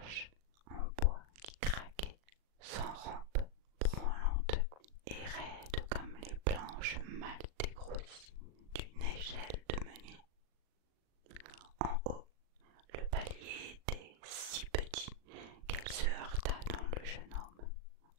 en bois qui craquait, sans rampe, branlante et raide comme les planches mal dégrossies d'une échelle de meunier. En haut, le palier était si petit qu'elle se heurta dans le jeune homme,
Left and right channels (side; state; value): left; late; 39 ms